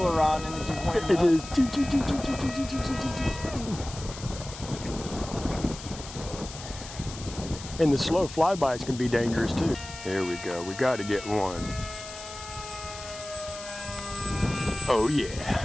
and it just went It nuts. is. And the slow flybys can be dangerous too. Here we go. We got to get one. Oh yeah.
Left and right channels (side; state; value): left; noise; hiss, 13 dB below the sound